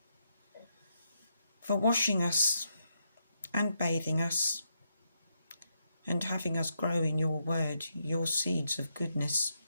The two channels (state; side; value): inverted; both; correlation -0.80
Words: for washing us and bathing us and having us grow in your word, your seeds of goodness,